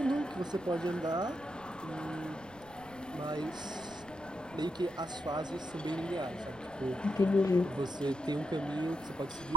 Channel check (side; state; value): right; noise; rumble, 23 dB below the sound